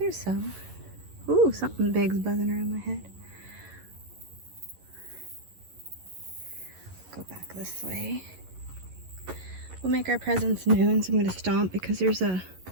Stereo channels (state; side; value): late; left; 11 ms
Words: some. Ooh, something big's buzzing around my head. Go back this way. We'll make our presence known, so I'm going to stomp because there's a